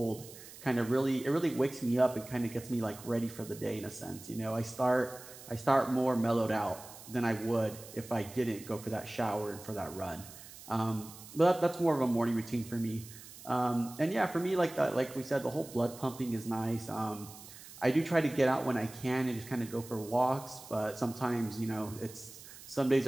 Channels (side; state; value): right; noise; hiss, 17 dB below the sound